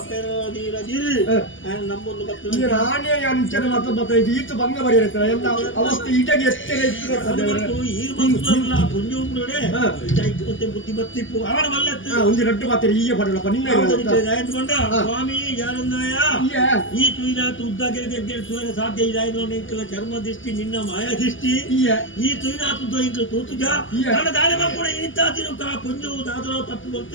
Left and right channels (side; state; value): right; late; 0.57 ms